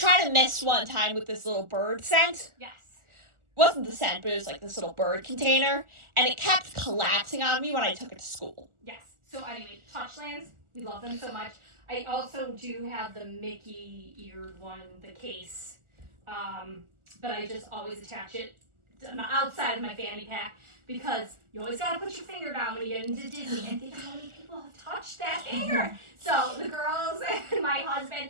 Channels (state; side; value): late; left; 1.4 ms